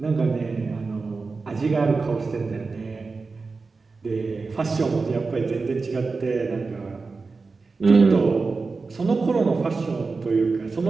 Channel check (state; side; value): quieter; left; 4.2 dB